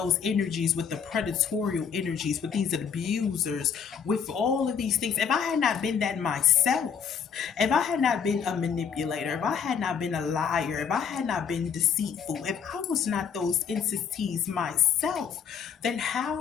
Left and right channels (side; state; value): right; quieter; 7.1 dB